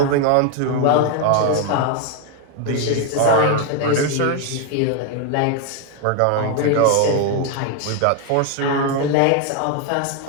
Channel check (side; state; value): both; different; correlation 0.01